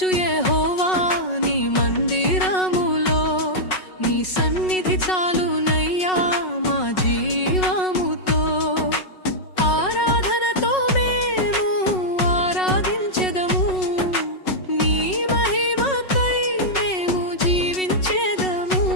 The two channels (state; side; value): late; right; 5.4 ms